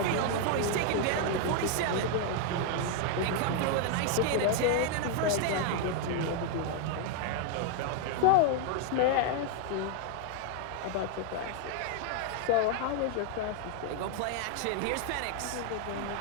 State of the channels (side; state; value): both; different; correlation 0.00